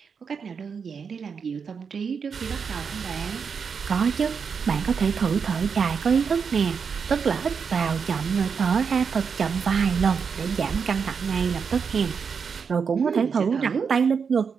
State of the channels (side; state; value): left; quieter; 6.1 dB